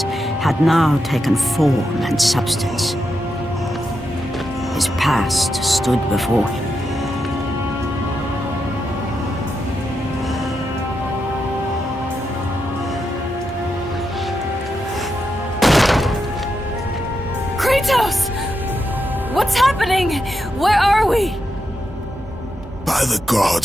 had now taken form and substance. His past stood before him. Kratos! What's happening? Where are we? By the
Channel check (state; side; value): normal; both; correlation 0.85